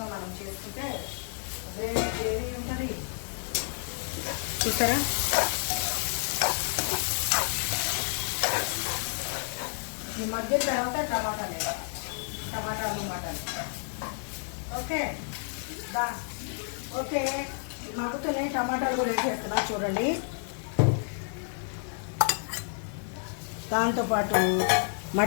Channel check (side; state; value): right; silent; 58 dB below the other